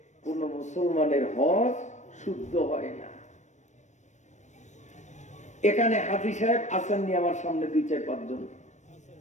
কোন মুসলমানের হজ শুদ্ধ হয় না। এখানে হাফিজ সাহেব আসেননি আমার সামনে 2-4-5 জন,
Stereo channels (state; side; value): late; right; 0.34 ms